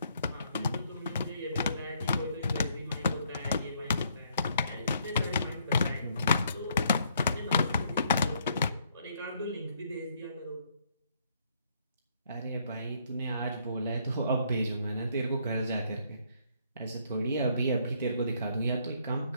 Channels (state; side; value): inverted; both; correlation -0.69